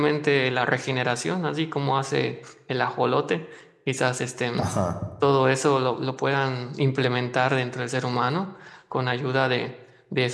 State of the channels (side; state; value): both; identical; correlation 1.00